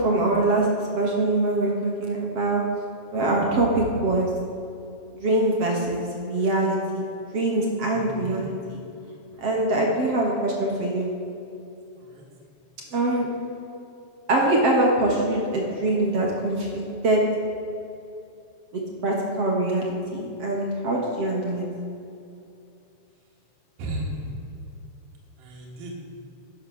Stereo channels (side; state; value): left; late; 7.6 ms